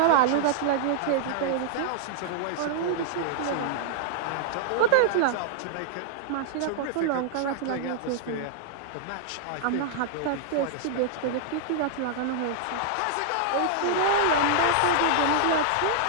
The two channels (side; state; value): both; different; correlation -0.01